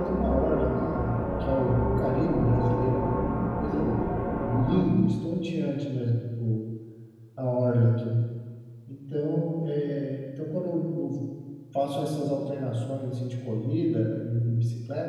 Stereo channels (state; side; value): identical; both; correlation 1.00